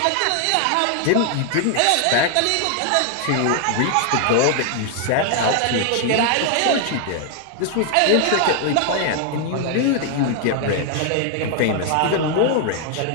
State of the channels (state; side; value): different; both; correlation 0.00